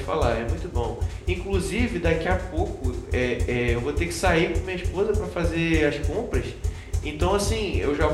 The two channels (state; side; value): identical; both; correlation 1.00